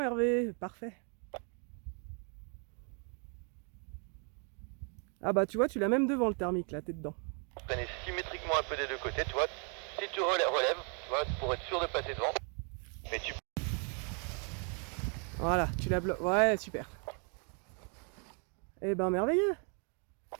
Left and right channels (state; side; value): quieter; left; 39.6 dB